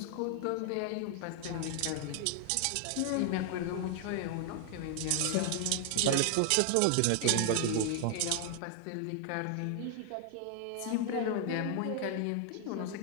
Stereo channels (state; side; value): different; both; correlation 0.00